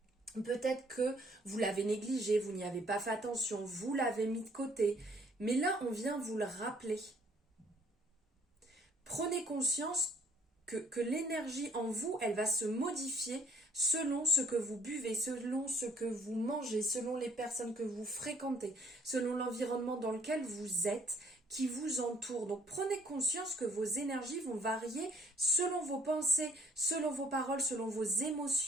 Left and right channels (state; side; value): normal; both; correlation 0.61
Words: Peut-être que vous l'avez négligé, vous n'y avez pas fait attention, vous l'avez mis de côté. Mais là, on vient vous le rappeler. Prenez conscience que l'énergie en vous, elle va se modifier selon ce que vous buvez, selon ce que vous mangez, selon les personnes que vous fréquentez, selon l'environnement dans lequel vous êtes, qui vous entoure. Donc prenez conscience que vos énergies vont varier selon vos pensées, selon vos paroles, selon vos